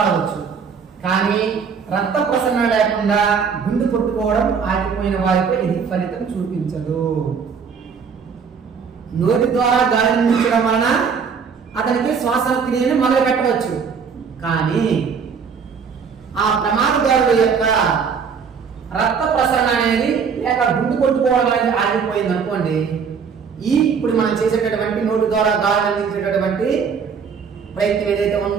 కానీ రక్త ప్రసరణ లేకుండా గుండె కొట్టుకోవడం ఆగిపోయిన వారిపై ఇది ఫలితం చూపించదు. నోటి ద్వారా గాలి అందించడం వలన అతనికి శ్వాస క్రియను మొదలు పెట్టవచ్చు. కానీ ఆ ప్రమాదకారుడు యొక్క రక్త ప్రసరణ అనేది లేక గుండె కొట్టుకోవడం అనేది ఆగిపోయింది అనుకోండి, ఇప్పుడు మనం చేసేటటువంటి నోటి ద్వారా గాలి అందించేటటువంటి ప్రయత్నం ఏదైతే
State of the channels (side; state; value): left; quieter; 6.2 dB